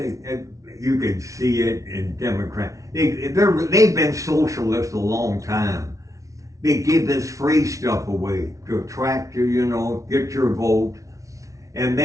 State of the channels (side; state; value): left; late; 0.16 ms